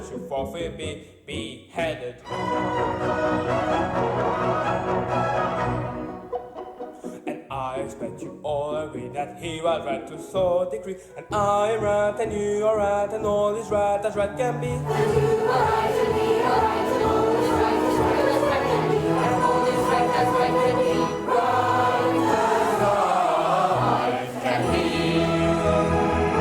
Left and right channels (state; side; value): identical; both; correlation 1.00